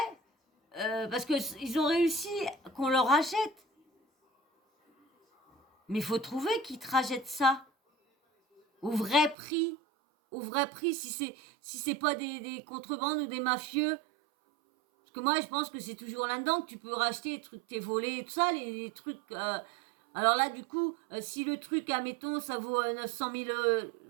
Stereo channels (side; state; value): left; drops out; at 9.3 s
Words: parce qu'ils ont réussi qu'on leur achète. Mais il faut trouver qui te rachète ça. Au vrai prix, si c'est pas des contrebandes ou des mafieux. Parce que moi, je pense que c'est toujours là-dedans que tu peux racheter les trucs que t'es volés et tout ça, les trucs... alors là, du coup, si le truc, admettons, ça vaut 900 000...